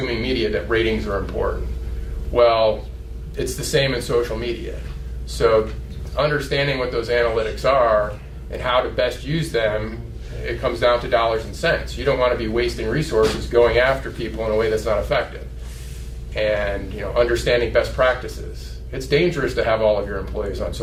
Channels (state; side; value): identical; both; correlation 1.00